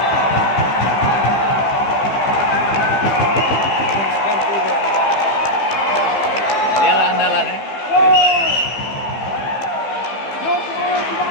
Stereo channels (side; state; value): right; late; 15 ms